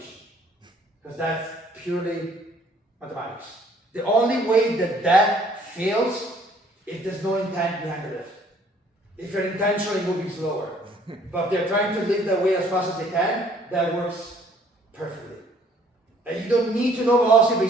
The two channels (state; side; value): normal; both; correlation 0.60